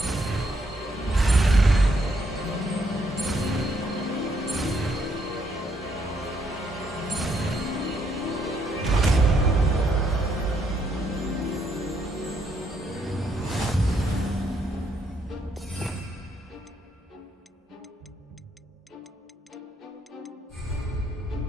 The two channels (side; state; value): both; normal; correlation 0.74